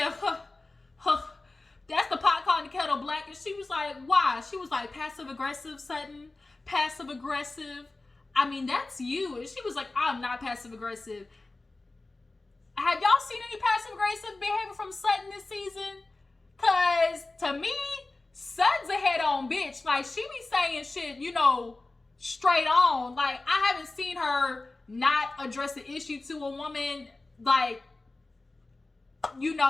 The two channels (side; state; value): right; quieter; 3.2 dB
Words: that's the pot calling the kettle black. And she was like, why? She was like, passive aggressive, Sutton. Passive aggressive. I mean, that's you. And she was like, I'm not passive aggressive. Have y'all seen any passive aggressive behavior from Sutton this season? Cause to me, Sutton's a head on bitch. Like, she be saying shit, you know, straight on. Like, I haven't seen her not address the issue to a woman, like, you